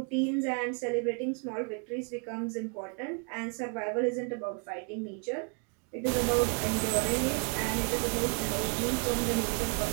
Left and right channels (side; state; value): left; quieter; 37.8 dB